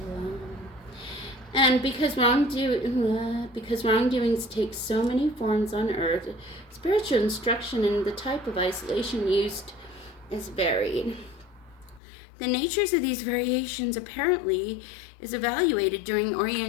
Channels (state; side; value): drops out; right; at 12.0 s